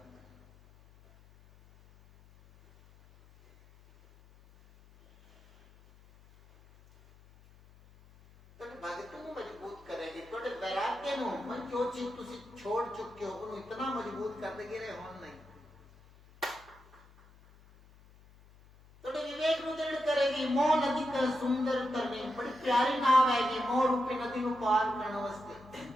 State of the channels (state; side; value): noise; left; hum, 25 dB below the sound